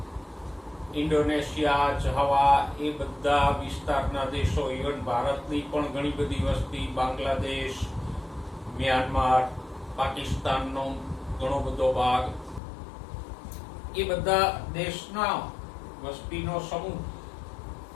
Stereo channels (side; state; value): right; drops out; at 12.6 s